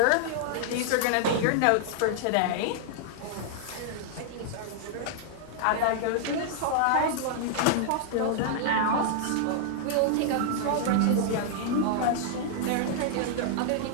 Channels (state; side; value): different; both; correlation -0.01